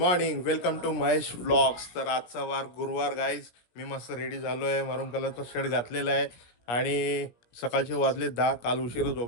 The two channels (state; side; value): late; right; 17 ms